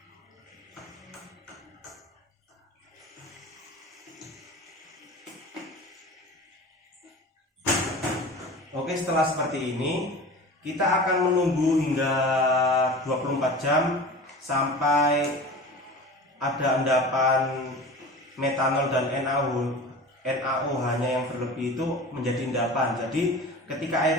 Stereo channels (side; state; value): both; normal; correlation 0.35